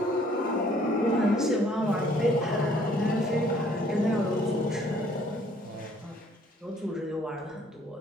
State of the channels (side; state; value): both; normal; correlation 0.60